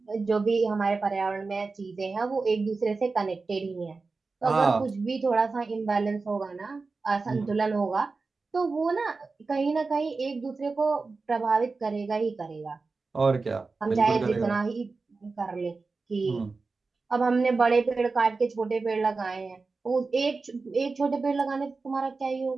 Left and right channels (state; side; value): quieter; left; 4.0 dB